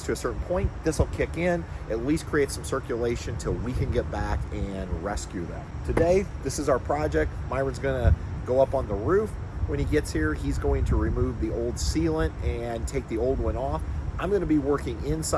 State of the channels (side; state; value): both; identical; correlation 1.00